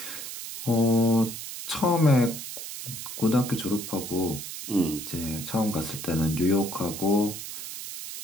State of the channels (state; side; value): noise; right; hiss, 9 dB below the sound